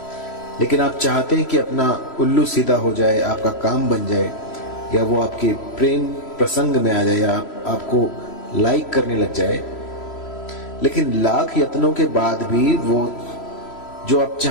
लेकिन आप चाहते हैं कि अपना उल्लू सीधा हो जाए, आपका काम बन जाए, या वो आपके प्रेम प्रसंग में आ जाए, या आपको लाइक करने लग जाए, लेकिन लाख यत्नों के बाद भी वो जो आप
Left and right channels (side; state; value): right; late; 3.0 ms